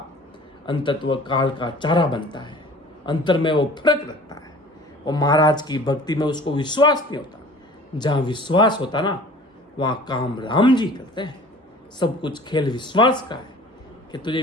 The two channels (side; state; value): both; normal; correlation 0.46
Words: अंतत्व काल का चारा बनता है। अंतर में वो फर्क रखता है, और महाराज की भक्ति में उसको विश्वास नहीं होता। जहाँ विश्वास होता ना, वहाँ काम राम जी करते हैं। सब कुछ खेल विश्वास का है, कि तुझे